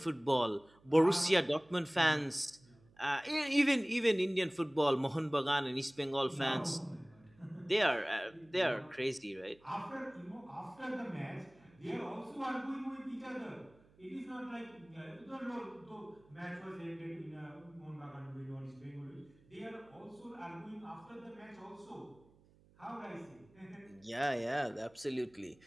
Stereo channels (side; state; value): right; noise; hum, 28 dB below the sound